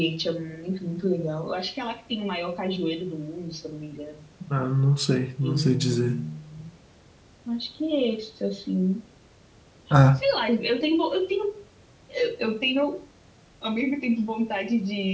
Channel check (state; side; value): identical; both; correlation 1.00